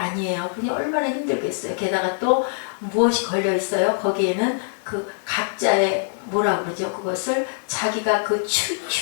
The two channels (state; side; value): silent; right; digital silence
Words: 그니 얼마나 힘들겠어요. 게다가 또 무엇이 걸려 있어요? 거기에는 그 각자의 뭐라 그러죠? 그것을 자기가 그